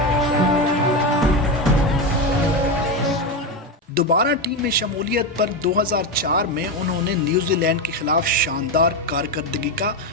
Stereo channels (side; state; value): both; normal; correlation 0.14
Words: دوبارہ ٹیم میں شمولیت پر 2004 میں انہوں نے نیوزی لینڈ کے خلاف شاندار کارکردگی کا